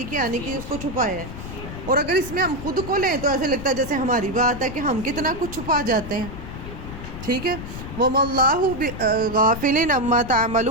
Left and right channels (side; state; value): left; noise; rumble, 10 dB below the sound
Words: کی آنے کی اس کو چھپایا ہے. اور اگر اس میں ہم خود کو لیں تو ایسے لگتا ہے جیسے ہماری بات ہے کہ ہم کتنا کچھ چھپا جاتے ہیں. ٹھیک ہے، وَمَا اللَّهُ غَافِلٍ عَمَّا